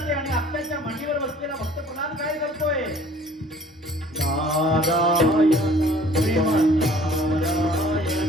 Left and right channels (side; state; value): both; normal; correlation 0.52